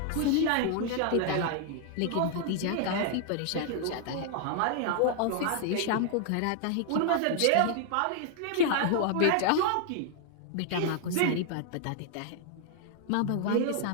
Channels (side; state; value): both; different; correlation 0.00